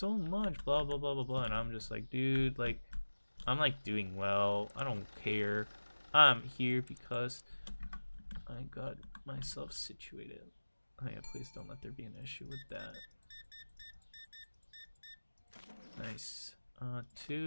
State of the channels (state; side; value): inverted; both; correlation -1.00